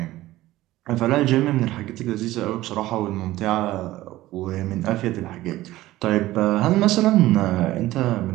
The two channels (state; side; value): quieter; left; 16.4 dB